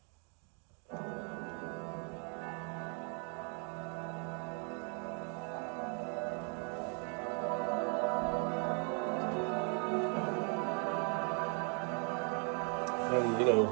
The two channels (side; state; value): left; quieter; 38.3 dB